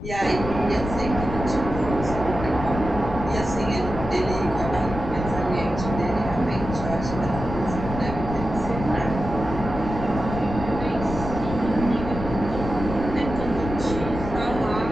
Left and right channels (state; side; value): noise; left; rumble, 7 dB below the sound